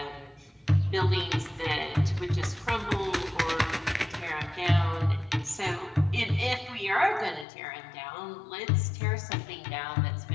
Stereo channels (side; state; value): right; drops out; at 7.5 s